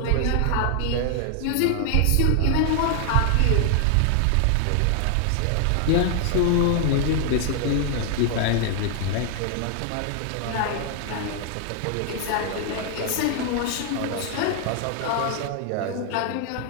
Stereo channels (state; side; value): different; both; correlation 0.00